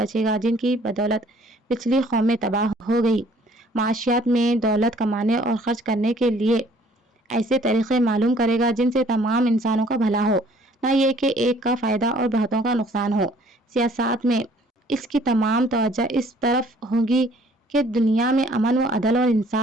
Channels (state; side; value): normal; both; correlation 0.58